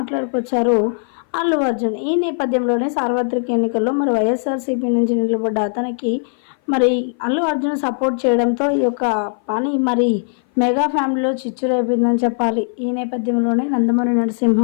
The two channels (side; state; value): right; silent; 58 dB below the other